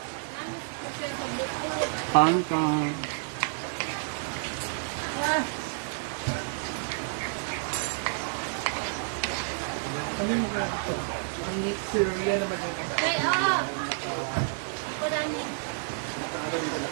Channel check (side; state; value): left; silent; 58 dB below the other